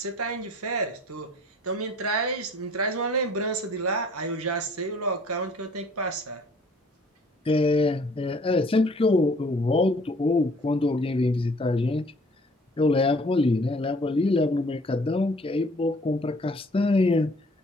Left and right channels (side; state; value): both; normal; correlation 0.55